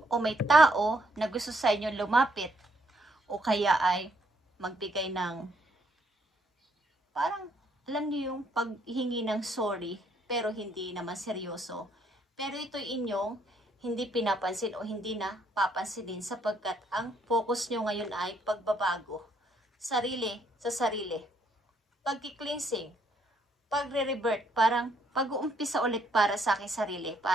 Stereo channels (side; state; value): both; normal; correlation 0.70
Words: may tao na gusto sa inyo lumapit o kaya ay magbigay ng parang alam niyo yung paghingi ng sorry pero hindi naman seryoso. Pero ito'y inyong hindi pinapansin o hindi na papansinin sapagkat ang focus nyo ngayon ay pagbabago. Sarili sa sarili. Pagki-cleansing. Pagre-revert. Parang pag-uumpisa ulit para sa aking sarili.